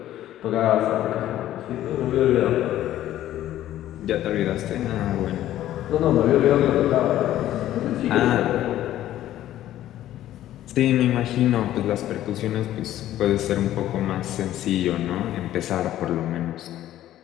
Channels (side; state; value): right; quieter; 13.1 dB